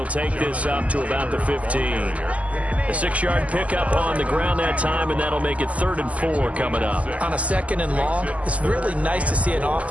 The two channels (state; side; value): late; left; 0.069 ms